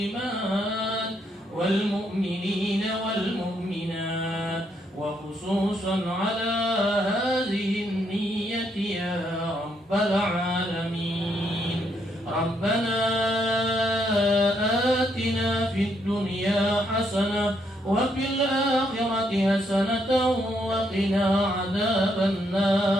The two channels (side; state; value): both; normal; correlation 0.75